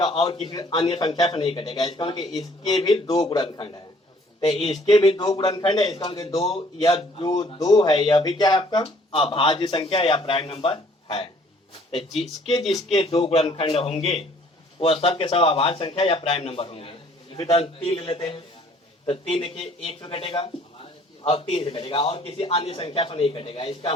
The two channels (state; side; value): normal; both; correlation 0.59